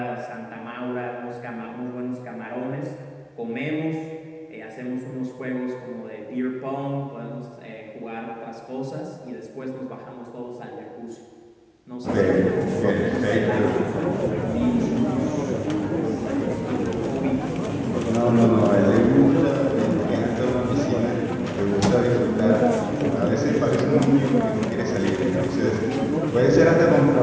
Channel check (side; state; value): both; identical; correlation 1.00